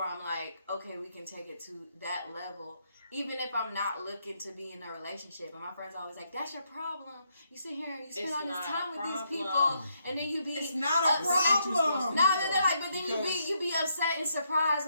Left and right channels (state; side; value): inverted; both; correlation -0.77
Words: I'm like, okay, we can take it to that level. Even if I'm not looking to be in a relationship. And my friends always like, that's your problem. You sit here and you spend all this time with these people, and then you be It's not a problem. No, they're like, but then you be upset and surprised